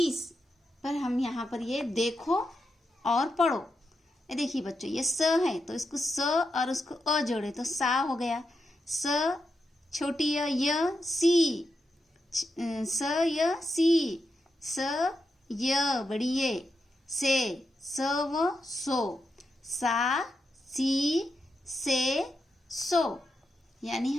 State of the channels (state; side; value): normal; both; correlation 0.86